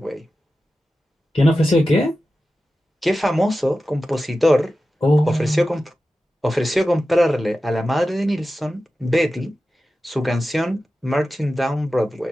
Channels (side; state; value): both; normal; correlation 0.93